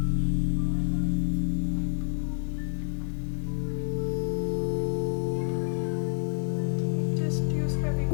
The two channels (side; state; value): right; silent; 59 dB below the other